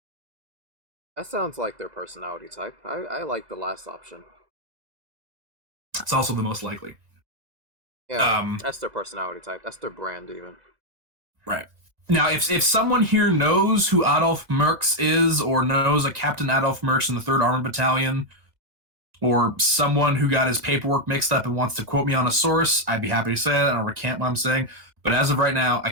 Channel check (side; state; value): left; late; 2.0 ms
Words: That sounds like their personality type. I like the last option. It's also the most likely. Yeah, that's their personality type. That's their brand, even. Right. Now, if someone here knows who Adolf Mertz is, or knows a Captain Adolf Mertz in the 3rd Armored Battalion, or someone who got his paperwork mixed up and wants to quote me on a source, I'd be happy to say that. I don't recant what I'm saying. But as of right now, I